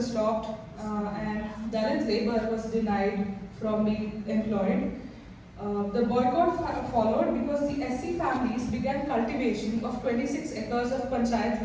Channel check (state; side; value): identical; both; correlation 1.00